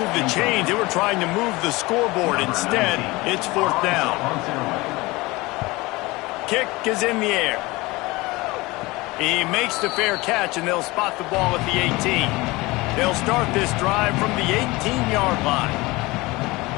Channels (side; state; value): right; quieter; 22.1 dB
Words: the chains. They were trying to move the scoreboard. Instead, it's 4th down. Kick is in the air. He makes the fair catch, and they'll spot the ball at the 18. They'll start this drive from the 18-yard line.